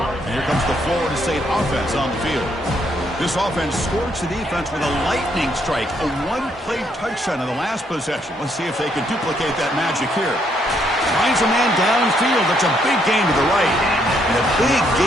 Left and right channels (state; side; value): normal; both; correlation 0.72